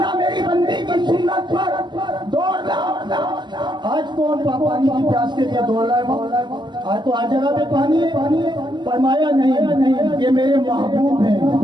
میری بندی کی سنت پر دوڑنا۔ آج کون پانی کی پیاس کے لیے دوڑ رہا ہے؟ آج تو ہر جگہ پہ پانی ہے۔ فرمایا نہیں، یہ میرے محبوب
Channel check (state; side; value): late; left; 0.21 ms